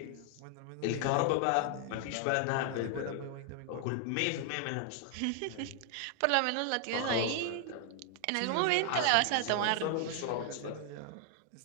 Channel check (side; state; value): both; different; correlation 0.00